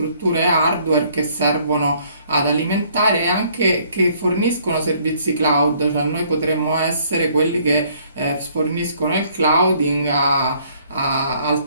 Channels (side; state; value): both; inverted; correlation -0.63